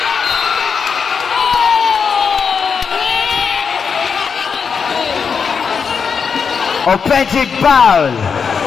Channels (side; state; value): right; quieter; 6.1 dB